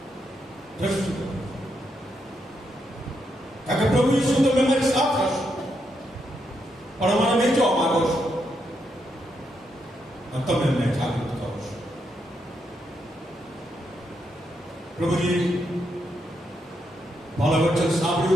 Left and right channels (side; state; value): both; normal; correlation 0.80